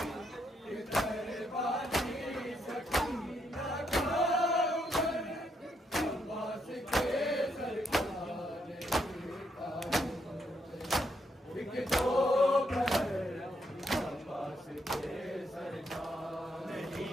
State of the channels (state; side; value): normal; both; correlation 0.76